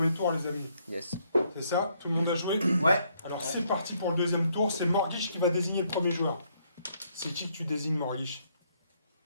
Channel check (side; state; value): both; inverted; correlation -0.71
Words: tour, les amis. Yes. C'est ça? Tout le monde a joué? Ouais. Alors c'est parti pour le deuxième tour. C'est Morlich qui va désigner le premier joueur. C'est qui que tu désignes, Morlich?